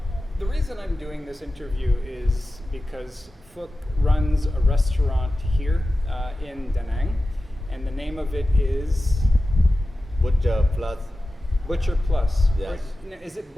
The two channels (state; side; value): normal; both; correlation 0.94